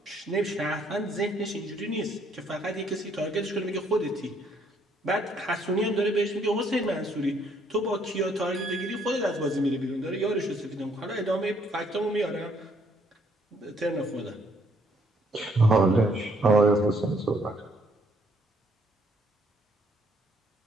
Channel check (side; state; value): both; normal; correlation 0.67